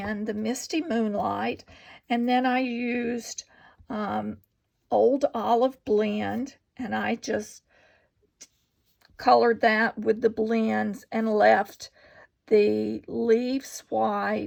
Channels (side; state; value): both; identical; correlation 1.00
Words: the Misty Moonlight, and then I used Old Olive Blend, and I just colored that with the blends and left the leaves